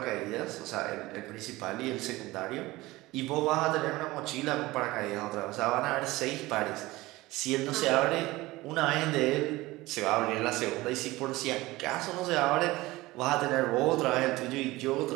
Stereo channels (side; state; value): left; quieter; 19.5 dB